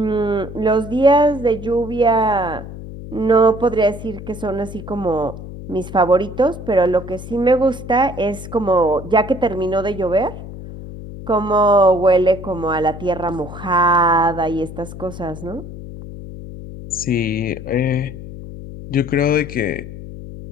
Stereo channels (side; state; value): left; noise; hum, 12 dB below the sound